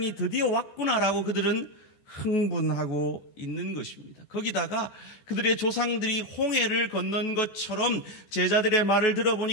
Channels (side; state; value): right; late; 14 ms